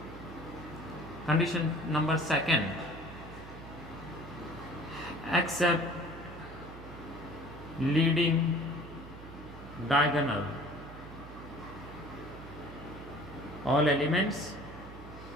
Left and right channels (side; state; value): right; noise; hum, 15 dB below the sound